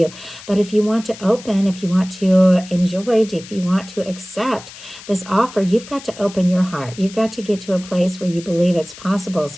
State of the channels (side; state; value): left; noise; hiss, 17 dB below the sound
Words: But if you want to open, if you want to enjoy, if you want to accept this offer, you've got to open your heart. You've got to get to a place where you believe it's possible.